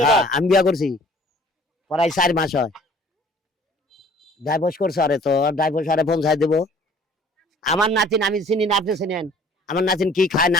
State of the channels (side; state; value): both; normal; correlation 0.53